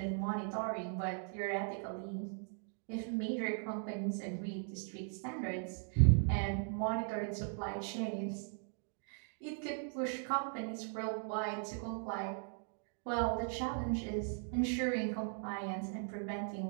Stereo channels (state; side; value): silent; left; 52 dB below the other